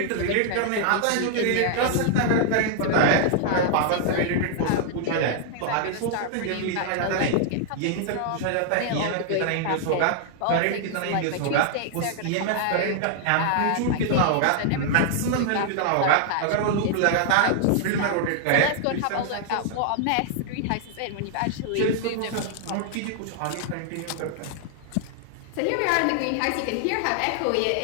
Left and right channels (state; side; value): different; both; correlation 0.00